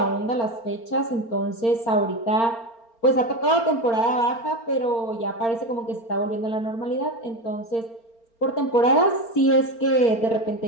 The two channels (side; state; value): right; late; 4.4 ms